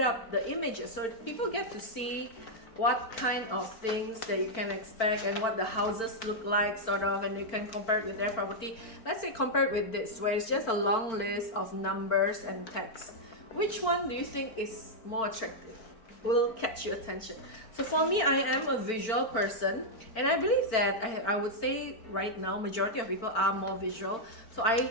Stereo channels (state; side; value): late; right; 4.5 ms